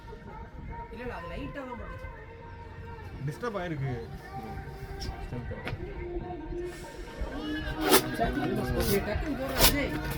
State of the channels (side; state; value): both; identical; correlation 1.00